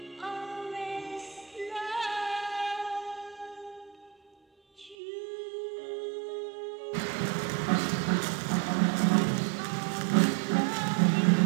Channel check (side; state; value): left; drops out; at 5.0 s